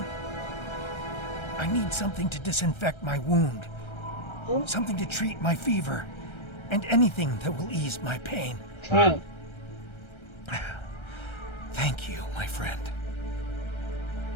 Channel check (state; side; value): late; right; 1.3 ms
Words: I need something to disinfect my wound, something to treat my fever, and anything that will ease my pain. Okay. Thank you, my friend.